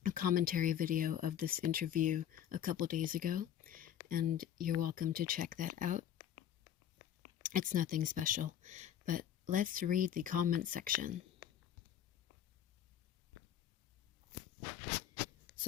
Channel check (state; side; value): quieter; right; 10.1 dB